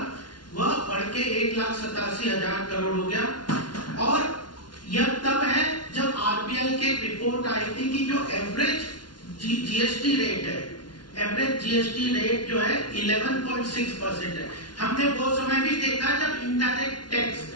वह बढ़ के 1,87,000 करोड़ हो गया। और यह तब है जब आरबीआई के जीएसटी रेट है, एवरेज जीएसटी रेट जो है 11.6% है। हमने वो समय भी देखा जब इनडायरेक्ट टैक्स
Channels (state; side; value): late; right; 0.70 ms